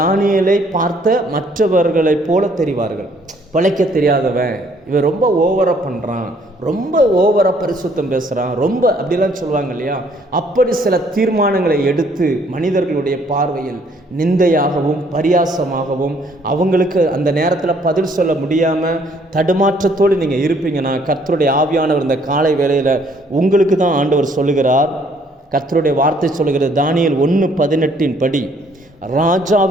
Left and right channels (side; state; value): both; normal; correlation 0.63